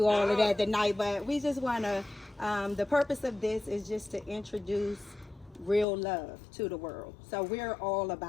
all of that tonight. But we just want to. The purpose of this is just to introduce real love to the world. So we're all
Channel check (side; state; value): right; drops out; at 5.9 s